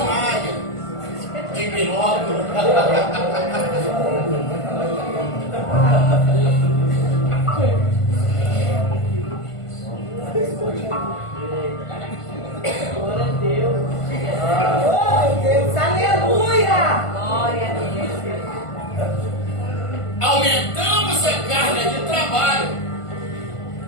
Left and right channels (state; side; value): late; right; 1.5 ms